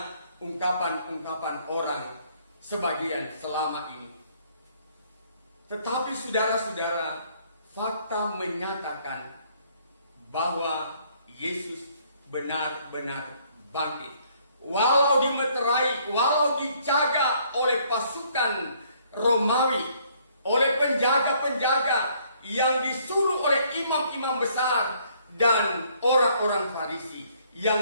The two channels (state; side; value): inverted; both; correlation -0.64